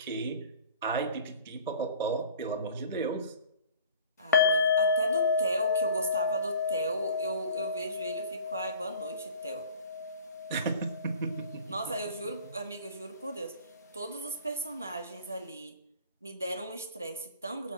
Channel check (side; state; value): both; inverted; correlation -0.46